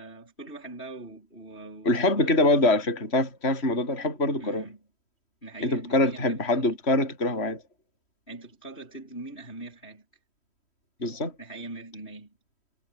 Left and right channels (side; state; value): right; late; 3.1 ms